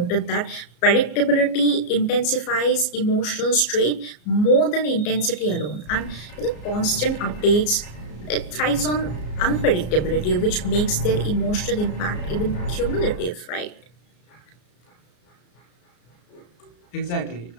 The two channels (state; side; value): late; right; 34 ms